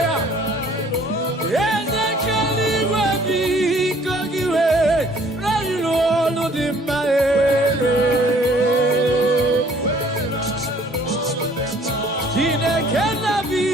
Eze kere igwe biko gị were ilu ọlụ dị mma. Chineke na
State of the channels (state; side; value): normal; both; correlation 0.57